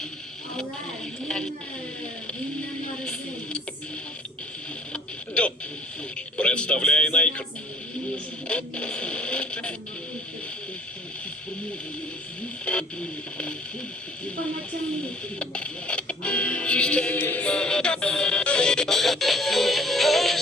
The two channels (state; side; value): normal; both; correlation 0.54